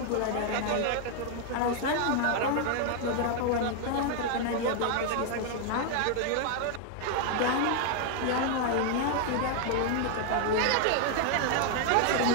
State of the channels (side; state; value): both; different; correlation 0.00